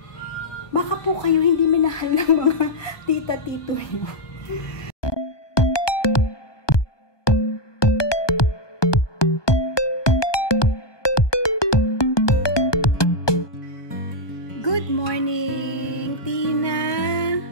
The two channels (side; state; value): right; late; 1.2 ms